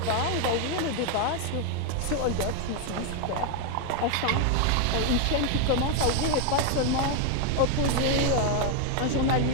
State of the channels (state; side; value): different; both; correlation 0.01